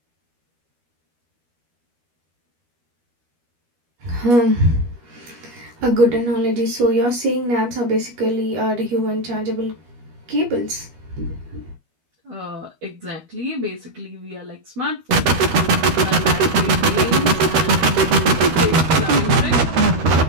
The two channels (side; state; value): left; late; 13 ms